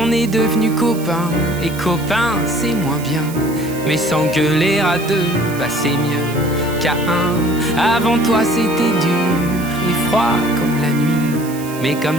est devenus copains, et copains c'est moins bien. Mais s'engueuler à deux, bah c'est mieux qu'à un. Avant toi c'était dur et froid comme la nuit, mais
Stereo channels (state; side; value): noise; right; hiss, 15 dB below the sound